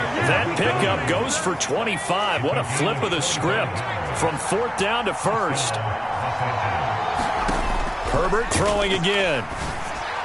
That pickup goes for 25. What a flip of the script from 4th down to 1st. Herbert throwing again.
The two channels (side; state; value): both; identical; correlation 1.00